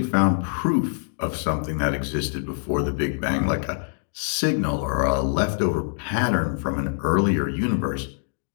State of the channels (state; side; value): silent; right; digital silence